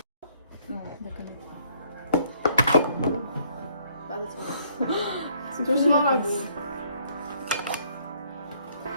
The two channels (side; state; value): both; inverted; correlation -0.65